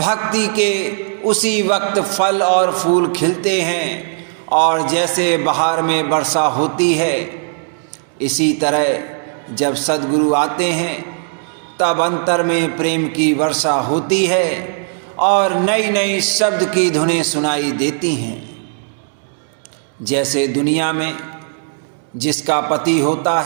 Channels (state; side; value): silent; left; digital silence